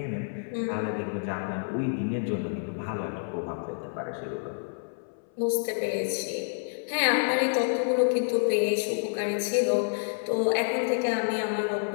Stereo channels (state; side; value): silent; right; 59 dB below the other